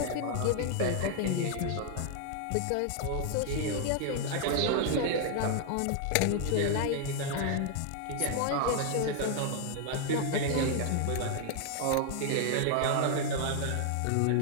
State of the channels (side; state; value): both; different; correlation 0.00